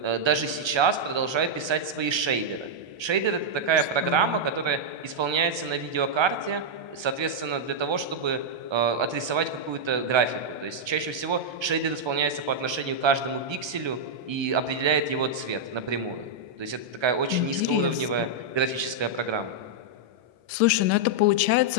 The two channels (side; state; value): left; late; 1.3 ms